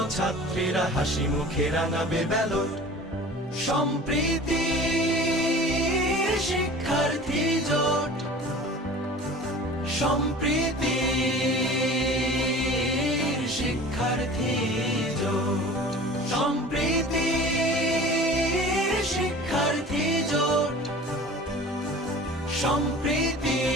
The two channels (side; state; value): both; normal; correlation 0.41